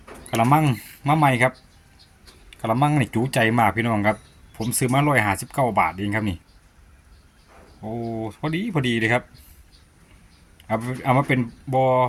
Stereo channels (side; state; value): both; identical; correlation 1.00